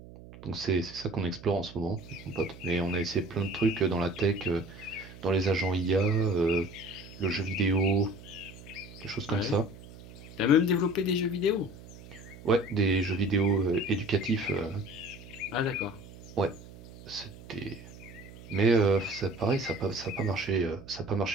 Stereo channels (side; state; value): right; noise; hum, 18 dB below the sound